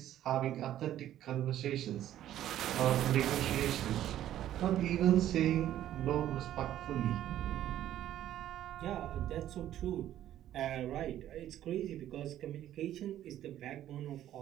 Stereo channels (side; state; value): left; quieter; 12.2 dB